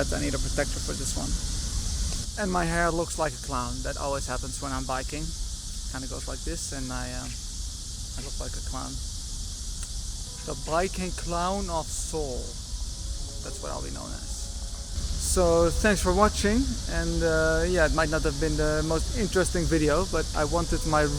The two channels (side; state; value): both; identical; correlation 1.00